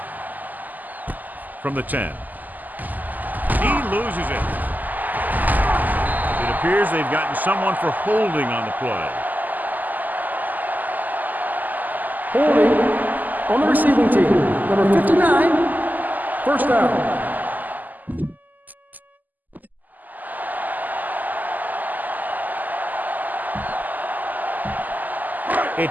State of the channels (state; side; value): late; left; 0.083 ms